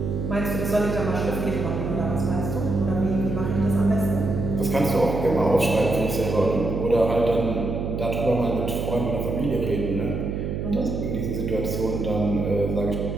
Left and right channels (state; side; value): noise; right; hum, 3 dB below the sound